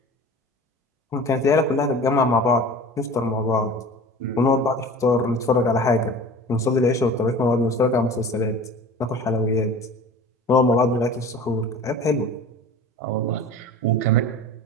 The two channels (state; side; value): normal; both; correlation 0.39